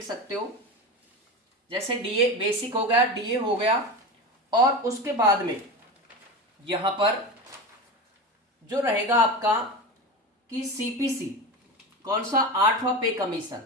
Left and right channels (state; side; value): normal; both; correlation 0.25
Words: सकते हो, जैसे डीए बेसिक हो गया, डीए हो गया, और उसके बाद में यहां पर जो रहेगा आपका कि सीपीसी, कौन सा 8वां पे कमीशन,